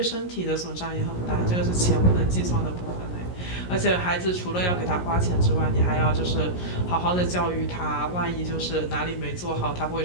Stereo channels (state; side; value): late; right; 17 ms